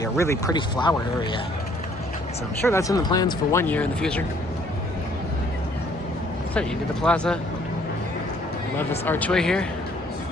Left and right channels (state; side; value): normal; both; correlation 0.62